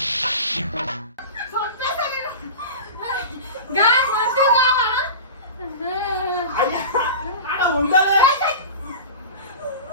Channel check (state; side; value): inverted; both; correlation -0.31